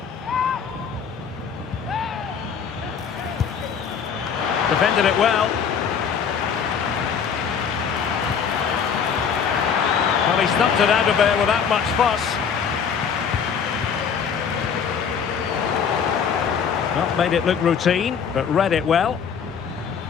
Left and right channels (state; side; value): quieter; right; 6.9 dB